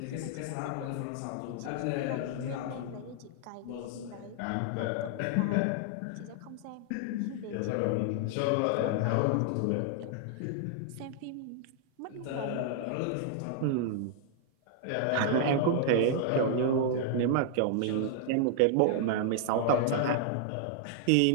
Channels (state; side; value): different; both; correlation -0.01